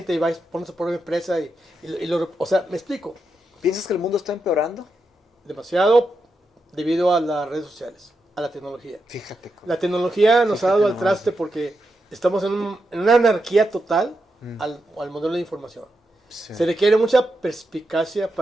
y va y pone su propia empresa o sea, me explico. ¿Piensas que el mundo está empeorando? Demasiado debido a las redes sociales, a la tecnología. Fíjate. La tecnología nos ha dado al nomás. traste porque estamos en una anarquía total al modelo de información. Sí. Se requiere mucha perspicacia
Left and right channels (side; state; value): both; normal; correlation 0.86